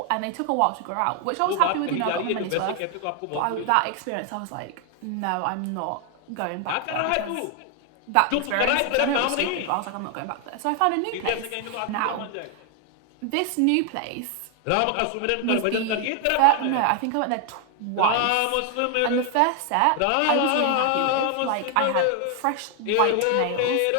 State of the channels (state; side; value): different; both; correlation 0.01